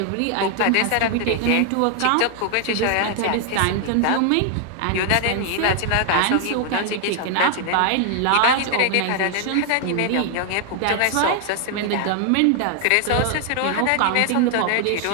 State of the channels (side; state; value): both; different; correlation 0.00